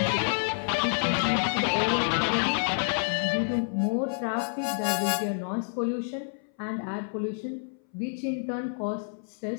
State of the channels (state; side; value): silent; right; 59 dB below the other